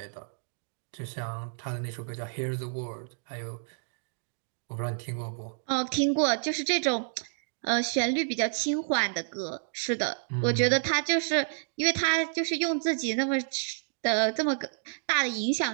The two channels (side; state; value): left; silent; digital silence